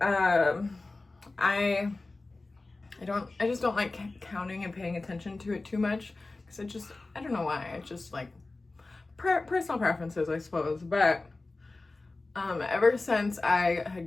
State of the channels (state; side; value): quieter; right; 3.3 dB